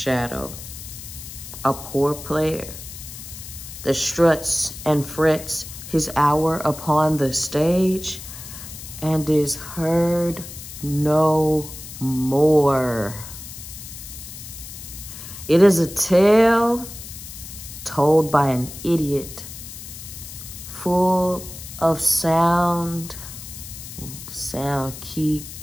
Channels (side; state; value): left; noise; hiss, 12 dB below the sound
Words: A poor player that struts and frets his hour upon the stage and is heard no more. It is a tale told by an idiot, full of sound, key,